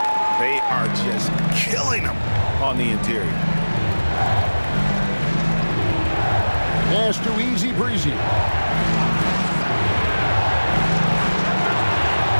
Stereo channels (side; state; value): both; inverted; correlation -1.00